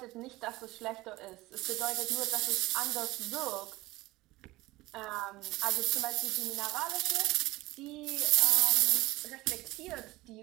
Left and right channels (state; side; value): quieter; left; 19.3 dB